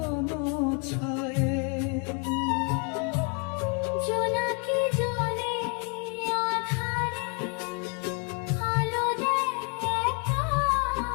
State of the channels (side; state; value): right; quieter; 37.0 dB